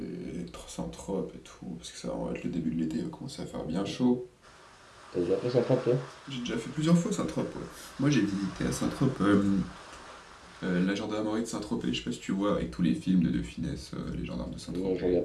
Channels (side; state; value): both; identical; correlation 1.00